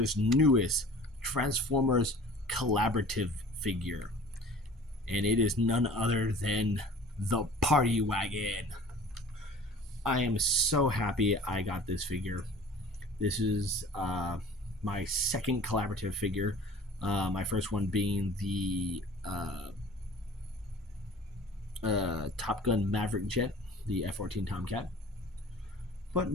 newest Transformers Collaborative figure, and it is none other than the Party Wagon. I am so happy I got this figure. This is my second collaborative figure, my first one being the Top Gun Maverick jet, the F-14 Tomcat. But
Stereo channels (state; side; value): normal; both; correlation 0.45